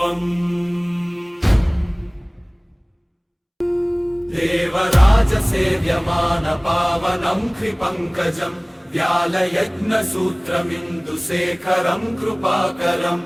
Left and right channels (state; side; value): identical; both; correlation 1.00